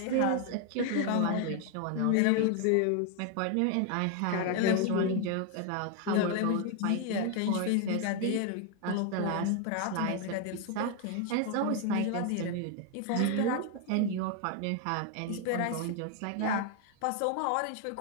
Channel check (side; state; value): both; different; correlation 0.01